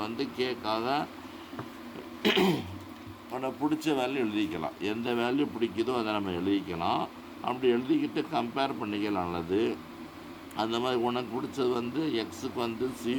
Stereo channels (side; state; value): both; identical; correlation 1.00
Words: கேக்காக உனக்கு பிடிச்ச வேல்யூ எழுதிக்கலாம். எந்த வேல்யூ பிடிக்குதோ அதை நம்ம எழுதிக்கலாம். அப்படி எழுதிக்கிட்டு கம்பேர் பண்ணிக்கலாம். நல்லது. அந்த மாதிரி உனக்கு பிடிச்சது எக்ஸுக்கு